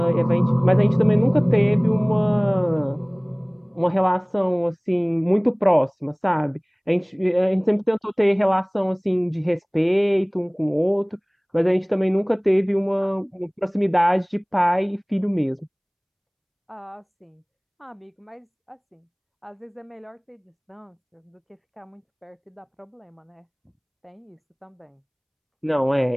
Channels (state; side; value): identical; both; correlation 1.00